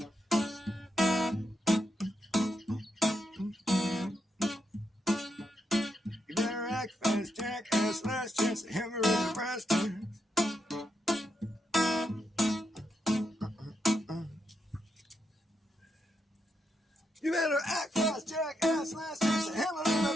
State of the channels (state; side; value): normal; both; correlation 0.82